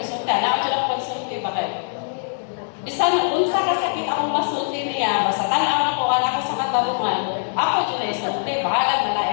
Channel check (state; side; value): silent; right; digital silence